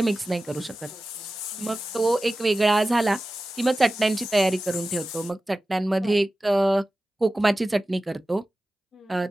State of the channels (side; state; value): both; normal; correlation 0.95